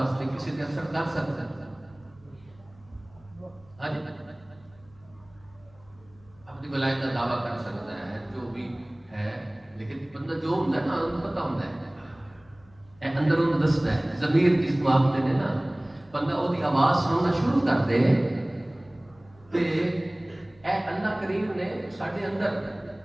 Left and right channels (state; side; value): noise; left; hum, 28 dB below the sound